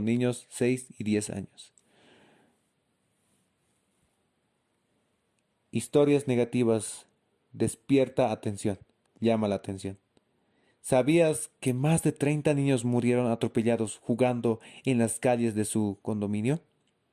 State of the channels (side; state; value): both; identical; correlation 1.00